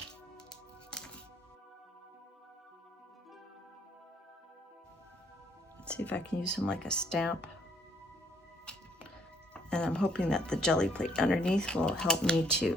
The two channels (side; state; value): both; normal; correlation 0.67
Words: Let's see if I can use him like a stamp. And I'm hoping that the jelly plate underneath will help me